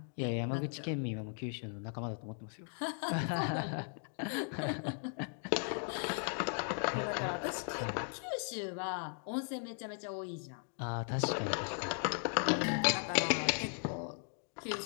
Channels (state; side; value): silent; right; 53 dB below the other